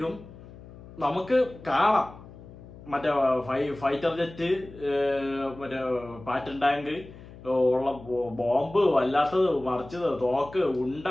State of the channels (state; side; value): noise; left; hum, 18 dB below the sound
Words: നമുക്ക് കാണാം മറ്റേ ഫൈറ്റർ ജെറ്റ്, മറ്റേ പാറ്റൻ ടാങ്ക് ഉള്ള ബോംബ്, വല്ലാത്തത് മറിച്ചത്, തോക്ക്, ഉണ്ട,